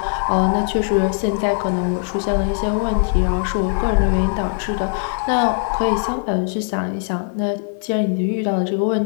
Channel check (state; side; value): silent; right; digital silence